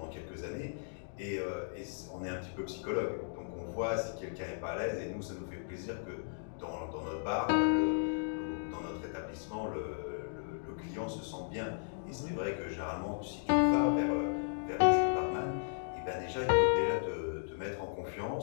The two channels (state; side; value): silent; right; digital silence